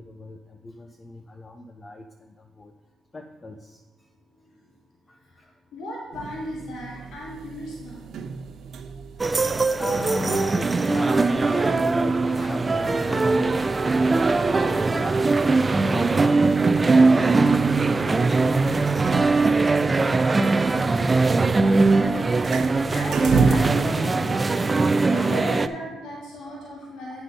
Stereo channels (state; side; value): quieter; left; 3.1 dB